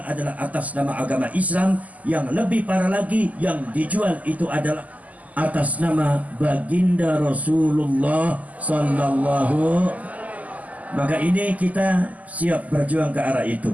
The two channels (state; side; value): late; left; 0.076 ms